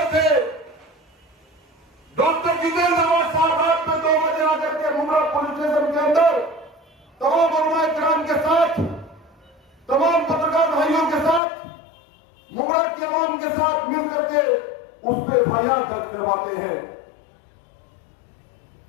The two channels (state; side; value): drops out; right; at 11.4 s